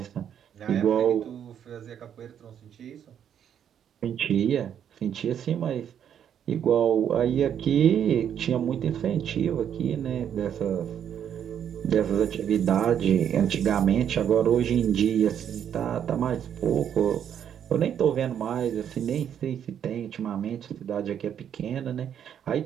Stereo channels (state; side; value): quieter; left; 9.1 dB